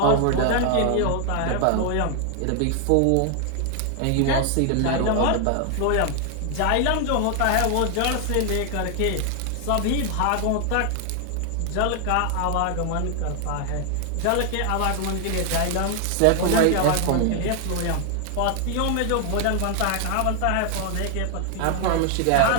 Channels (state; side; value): different; both; correlation 0.00